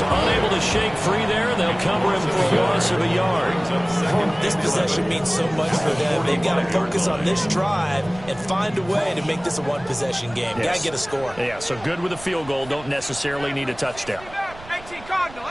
unable to shake free there. They'll cover him for a loss of a yard. This possession means so much for them. They've got to focus on this drive and find a way to make this a one-possession game. Yes. Got to get a score. Yeah, so good with a field goal. Don't necessarily need a touchdown. 18 Cardinal,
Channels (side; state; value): right; noise; rumble, 18 dB below the sound